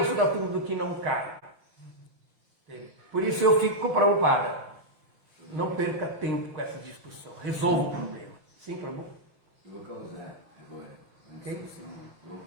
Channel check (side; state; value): left; late; 6.1 ms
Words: sou da turma do que não cai. Por isso eu fico com o Prabhupada. Não perca tempo com essa discussão. Resolva o problema. Sim, Prabhu? Eu vou causar agora. Ok?